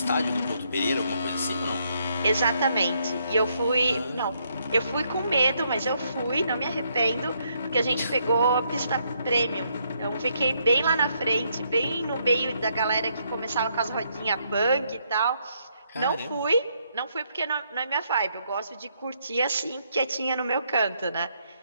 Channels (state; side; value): inverted; both; correlation -0.74